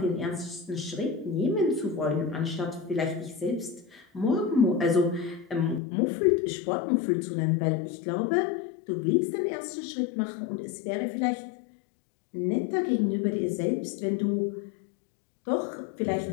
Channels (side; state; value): right; drops out; at 5.8 s